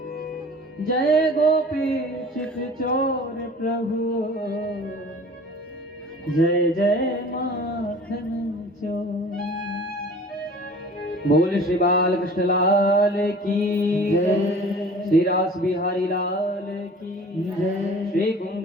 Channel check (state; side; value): normal; both; correlation 0.45